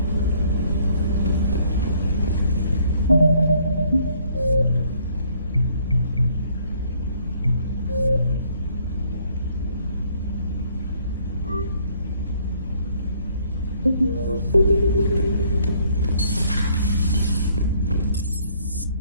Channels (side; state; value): both; inverted; correlation -0.64